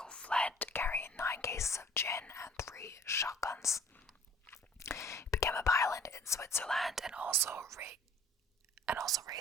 fled, carrying 9 cases of gin and 3 shotguns. He became a pilot in Switzerland and also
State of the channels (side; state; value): both; normal; correlation 0.53